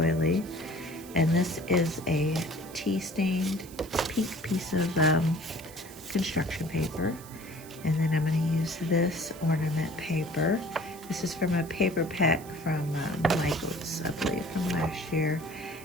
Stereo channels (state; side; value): noise; right; hiss, 18 dB below the sound